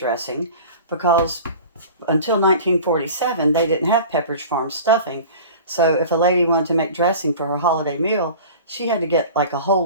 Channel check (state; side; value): inverted; both; correlation -0.39